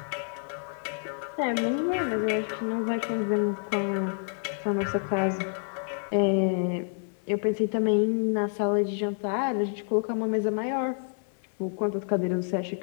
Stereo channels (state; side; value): silent; right; 59 dB below the other